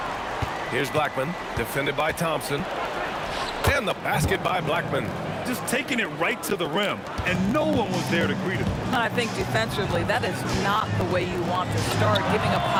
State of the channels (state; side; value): identical; both; correlation 1.00